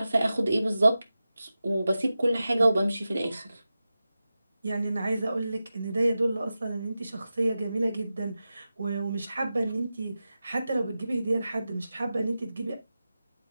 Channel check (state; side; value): inverted; both; correlation -0.93